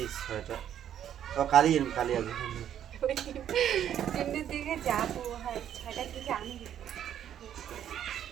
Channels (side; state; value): left; quieter; 10.1 dB